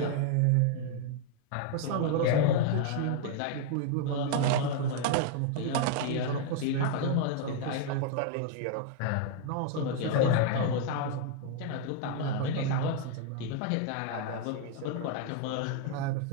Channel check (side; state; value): both; different; correlation 0.00